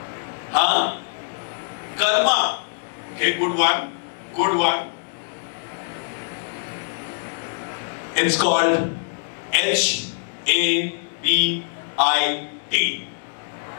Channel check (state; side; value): silent; right; 63 dB below the other